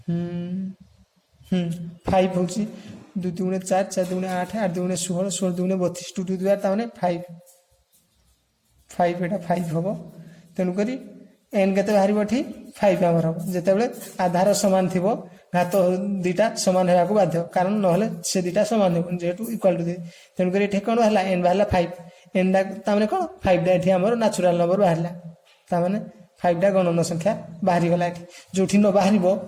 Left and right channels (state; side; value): identical; both; correlation 1.00